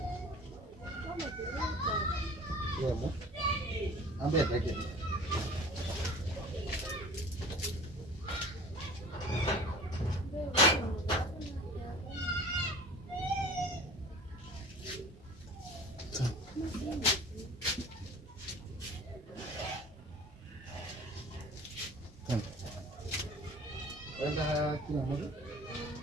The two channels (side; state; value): both; normal; correlation 0.43